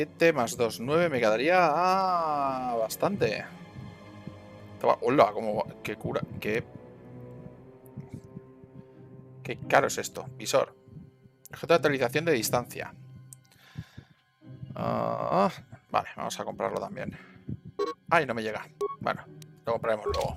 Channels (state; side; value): identical; both; correlation 1.00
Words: más 2, 9. Me quedaría bastante. Hola, como qué cura. Qué caro es esto. Visor. Objeto de actualización de distancia. Vale, vamos a comprarlo también. Ay, no me llega. Bueno, Lo compraremos luego.